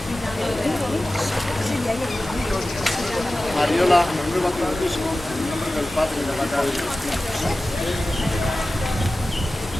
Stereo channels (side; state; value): both; normal; correlation 0.95